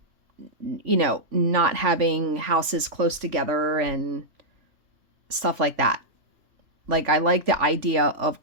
not having houses close together and stuff like that. Like, I like the idea of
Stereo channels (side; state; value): left; late; 3.5 ms